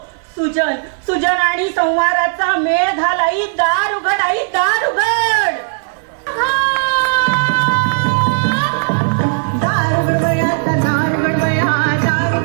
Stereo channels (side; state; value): left; silent; digital silence